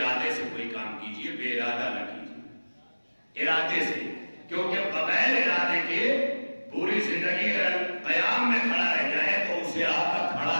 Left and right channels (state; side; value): inverted; both; correlation -1.00